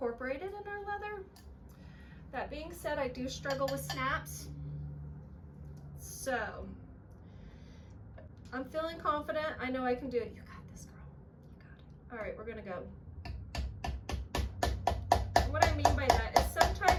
in our leather. That being said, I do struggle with snaps. So, I'm feeling confident. I know I can do it. You got this, girl. You got it. All right, we're gonna go. And what I mean by that is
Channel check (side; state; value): both; identical; correlation 1.00